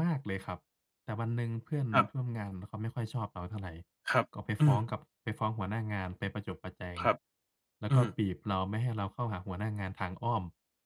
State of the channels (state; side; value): identical; both; correlation 1.00